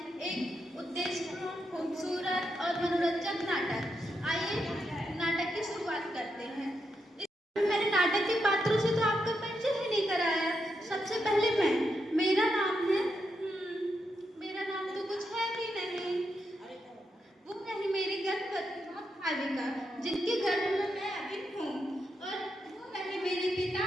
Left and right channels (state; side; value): normal; both; correlation 0.83